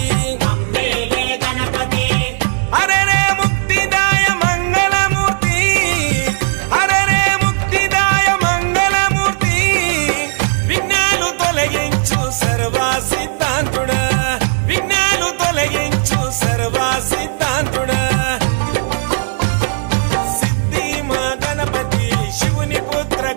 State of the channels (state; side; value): silent; left; digital silence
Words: హరే రే ముక్తిదాయ మంగళమూర్తి హరే రే ముక్తిదాయ మంగళమూర్తి విఘ్నాలు తొలగించు సర్వా సిద్ధాంతుడా విఘ్నాలు తొలగించు సర్వా సిద్ధాంతుడా సిద్ధి మా గణపతి శివుని పుత్ర